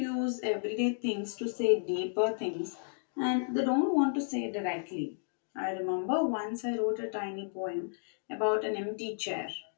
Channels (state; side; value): silent; right; digital silence